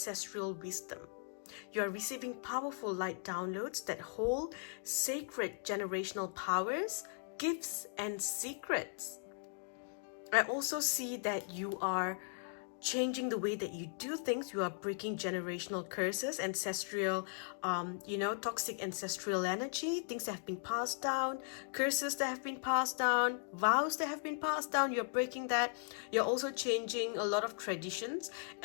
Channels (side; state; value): right; silent; digital silence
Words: wisdom. You are receiving powerful light downloads that hold sacred generational powers, gifts, and secrets. I also see that you are changing the way that you do things. You are breaking generational curses, ancestral, toxic ancestral energy, things that have been passed down, curses that have been passed down, vows that have been passed down. You're breaking that. You're also changing a lot of traditions,